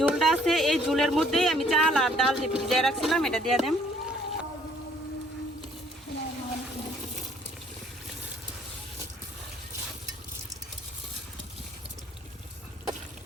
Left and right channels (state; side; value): normal; both; correlation 0.61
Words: আছে এই ঝোলের মধ্যেই আমি চাল আর ডাল যে ভিজিয়ে রাখছিলাম এটা দিয়ে দেব।